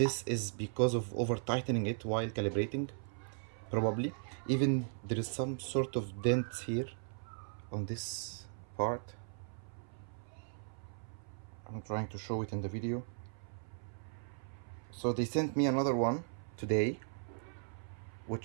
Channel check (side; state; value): left; silent; 53 dB below the other